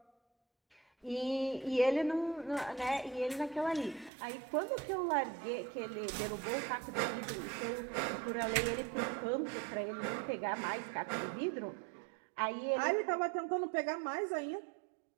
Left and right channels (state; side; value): drops out; left; at 4.1 s